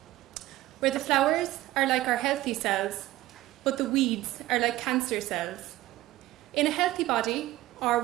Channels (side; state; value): left; quieter; 16.4 dB